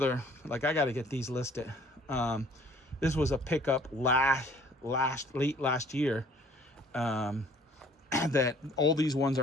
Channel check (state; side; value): normal; both; correlation 0.56